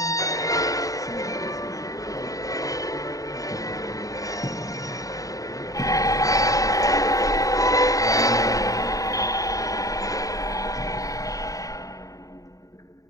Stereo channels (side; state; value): right; late; 0.16 ms